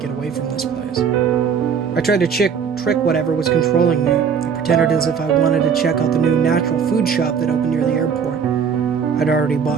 away from this place. I tried to trick whatever was controlling me. I pretended as if I wanted to check out the new natural food shop that opened near the airport. I'd already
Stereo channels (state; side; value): quieter; left; 6.8 dB